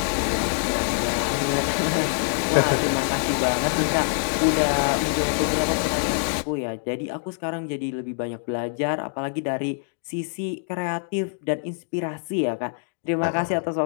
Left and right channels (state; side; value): silent; right; digital silence